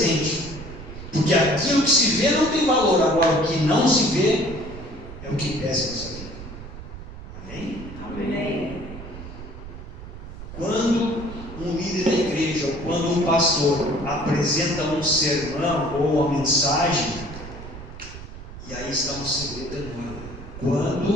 Porque aquilo que se vê não tem valor, agora o que não se vê é o que pesa em nossa vida. Amém? Amém. Quando um líder da igreja, ou quando um pastor apresenta um sermão ou uma mensagem, e aí está um segredo enorme.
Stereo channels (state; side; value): noise; right; rumble, 12 dB below the sound